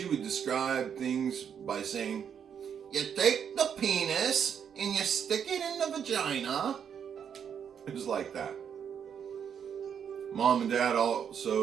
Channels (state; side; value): quieter; left; 7.9 dB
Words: would describe things by saying, you take the penis and you stick it in the vagina. It was like that. Mom and Dad